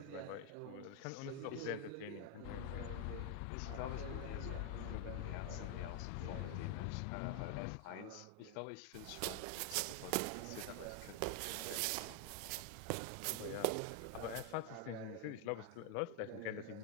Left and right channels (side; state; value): both; different; correlation 0.00